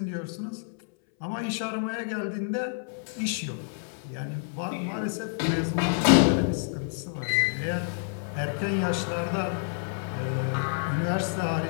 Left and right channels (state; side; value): silent; right; 59 dB below the other